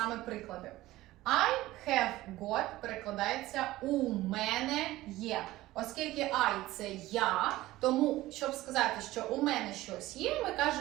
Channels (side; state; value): left; quieter; 17.0 dB